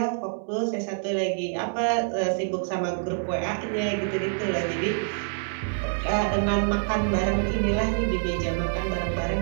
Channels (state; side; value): silent; left; 61 dB below the other